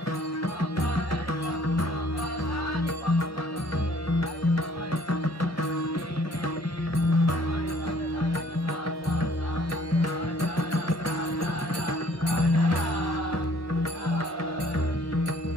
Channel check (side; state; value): right; late; 1.3 ms